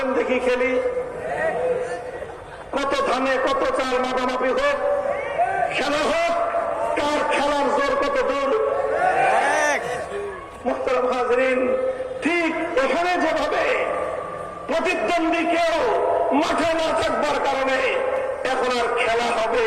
দেখি খেলি। কত ধানে কত চাল মাপামাপি হোক, খেলা হোক, কার খেলার জোর কত দূর। মুহতারাম হাজরিন, ঠিক এখানে যেভাবে প্রতিদ্বন্দ্বী কেউ মাঠে না থাকবার কারণে এখন আর খেলা হবে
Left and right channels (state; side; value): identical; both; correlation 1.00